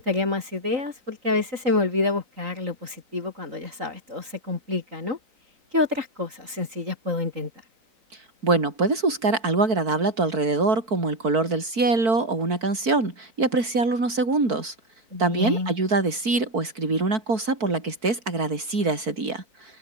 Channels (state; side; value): late; left; 4.5 ms